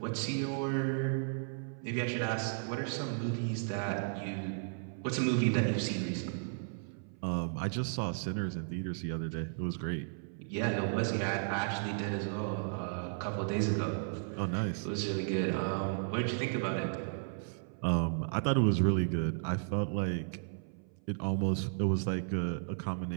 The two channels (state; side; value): silent; left; 55 dB below the other